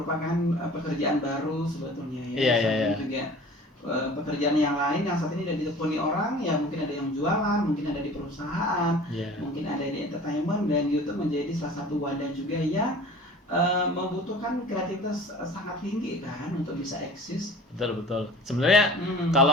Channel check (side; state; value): both; normal; correlation 0.44